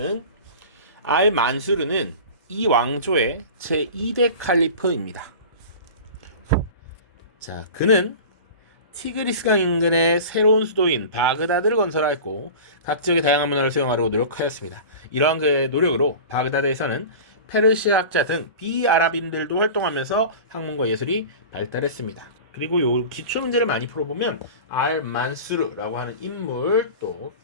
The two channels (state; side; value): inverted; both; correlation -0.35